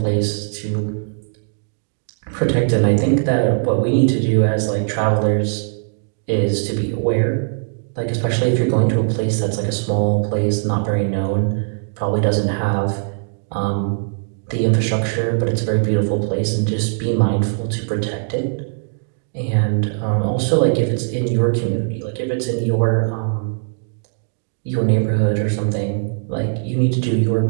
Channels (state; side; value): silent; left; digital silence